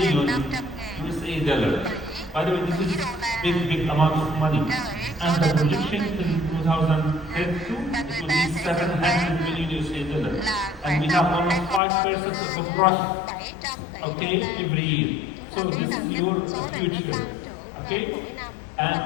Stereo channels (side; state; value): right; drops out; at 11.8 s